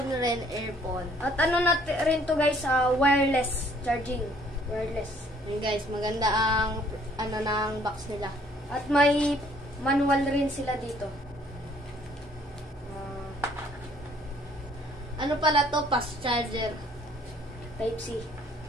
rin, earphone. At ano natin rin to guys, wireless charging. Wireless. Yun guys, maganda ang ano ng box nila. At may manual rin sila dito. Ano pala to? Fast charger. Type-C.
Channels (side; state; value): both; normal; correlation 0.61